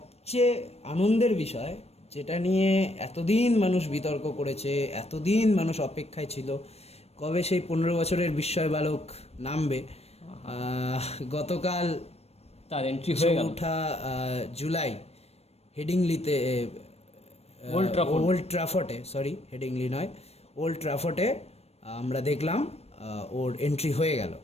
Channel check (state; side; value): late; right; 0.30 ms